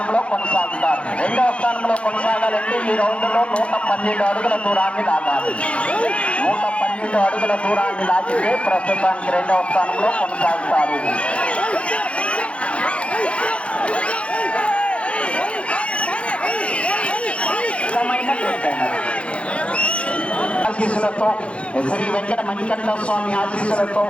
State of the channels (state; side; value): late; right; 0.061 ms